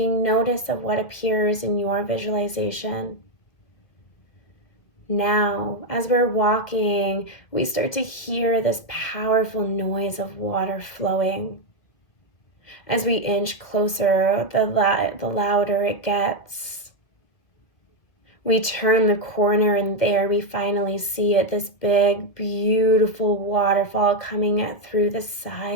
notice of what appears in your visualization. Now, as we're walking, we start to hear this powerful noise of water flowing. As we inch closer, the louder it gets. We turn the corner and there we finally see it, this big, beautiful waterfall coming through the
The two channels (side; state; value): right; late; 1.9 ms